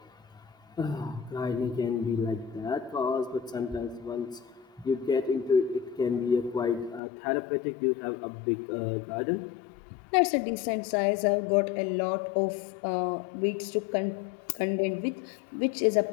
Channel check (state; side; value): drops out; right; at 7.0 s